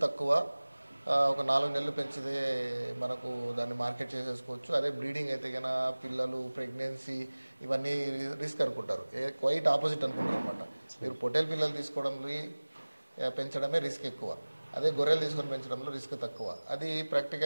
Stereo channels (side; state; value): both; inverted; correlation -1.00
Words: తక్కువ, ఒక 4 నెలలు పెంచితే మనకు దాన్ని మార్కెట్ చేసేసుకోవచ్చు. అదే బ్రీడింగ్ అయితే కన్నా పిల్లలు, ప్రెగ్నెన్సీ ఇవన్నీ రిస్క్ అనుకుంటారు. క్వైట్ ఆపోజిట్ అనుకుంటారు అనమాట. మీరు పొట్టేలు పిల్లలు తీసుకోవడంలో పెంచడమే రిస్క్ ఎక్కువ, అదే గొర్రెలు తీసుకొని పెంచడంలో రిస్క్ తక్కువ. అది